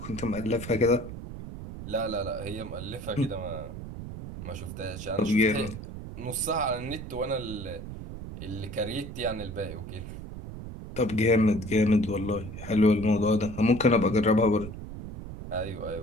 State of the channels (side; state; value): right; noise; rumble, 10 dB below the sound